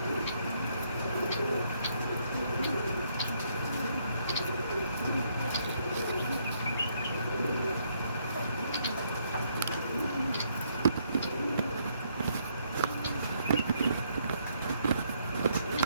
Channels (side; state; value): both; inverted; correlation -0.72